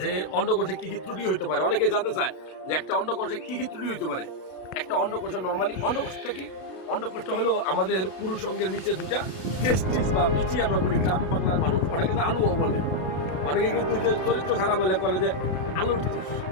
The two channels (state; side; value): late; right; 32 ms